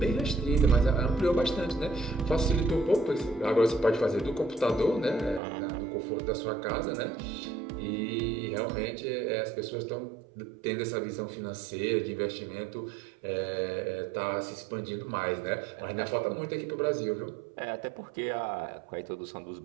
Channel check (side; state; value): left; drops out; at 5.4 s